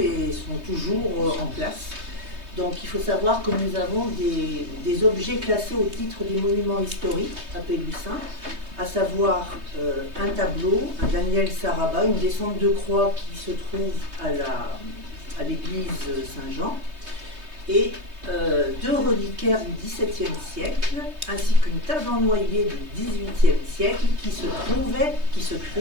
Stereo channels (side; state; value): left; late; 3.2 ms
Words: sont toujours en place. Donc il faut savoir que nous avons des objets classés au titre des monuments historiques à Pélussin, à savoir un tableau, un Daniel Saraba, une descente de croix qui se trouve à l'église Saint-Jean, et deux reliquaires du XVIIe siècle, ainsi qu'une table en noyer du XVIIIe siècle qui se